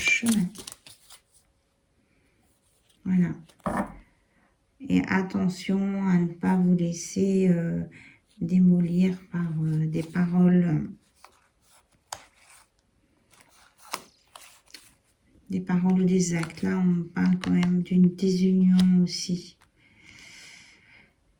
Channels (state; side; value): identical; both; correlation 1.00